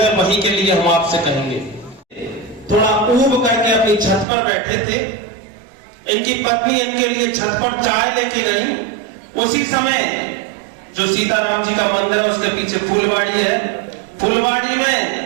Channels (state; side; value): drops out; left; at 4.2 s